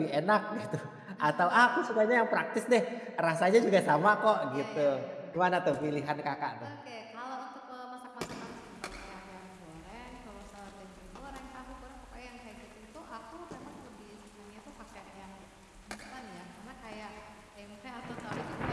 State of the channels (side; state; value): both; identical; correlation 1.00